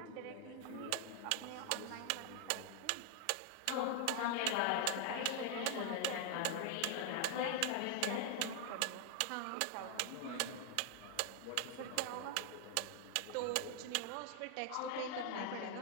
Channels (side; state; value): both; different; correlation 0.00